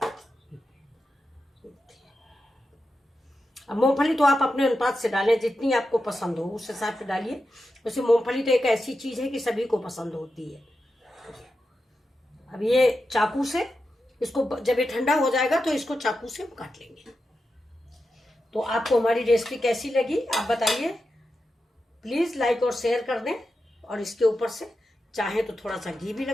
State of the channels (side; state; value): both; normal; correlation 0.90